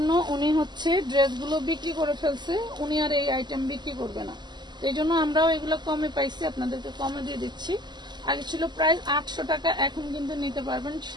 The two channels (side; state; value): left; late; 0.21 ms